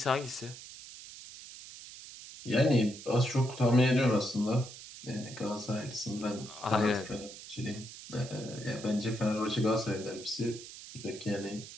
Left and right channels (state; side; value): noise; right; hiss, 14 dB below the sound